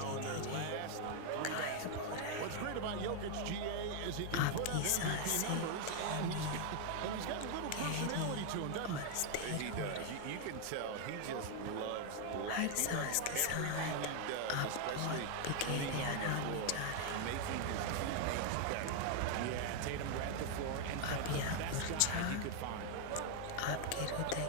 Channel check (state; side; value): different; both; correlation 0.00